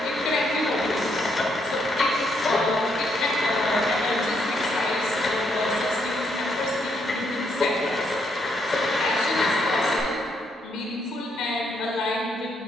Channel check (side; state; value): both; normal; correlation 0.75